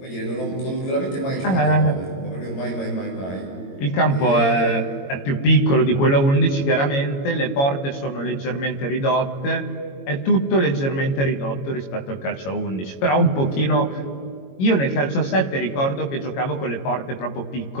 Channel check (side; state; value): right; late; 22 ms